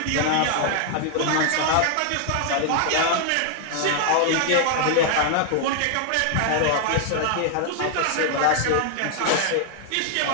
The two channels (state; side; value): different; both; correlation 0.00